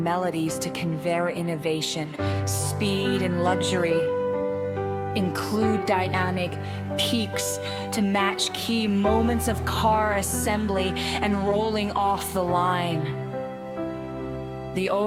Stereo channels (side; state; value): both; identical; correlation 1.00